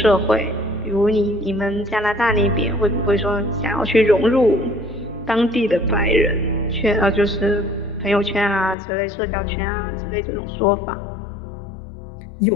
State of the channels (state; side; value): drops out; right; at 8.8 s